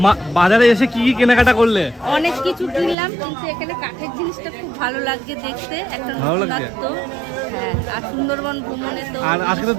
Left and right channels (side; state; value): left; drops out; at 3.0 s